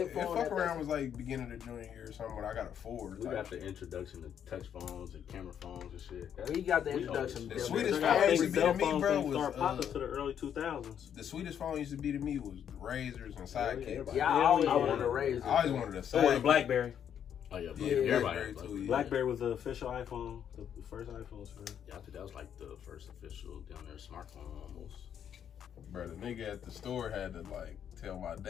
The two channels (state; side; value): quieter; right; 8.9 dB